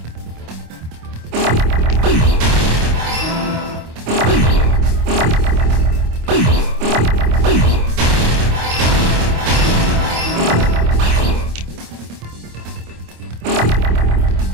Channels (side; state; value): left; late; 26 ms